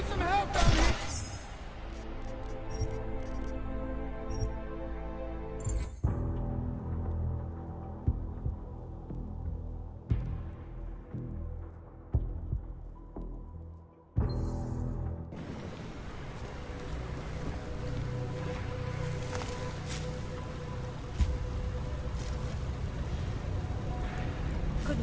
some help down here!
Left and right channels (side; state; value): both; identical; correlation 1.00